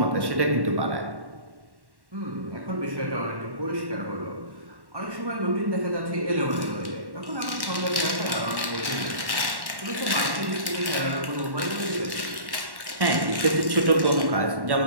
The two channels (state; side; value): late; left; 1.1 ms